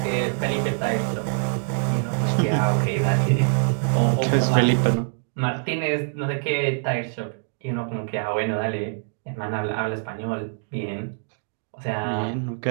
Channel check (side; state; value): left; silent; digital silence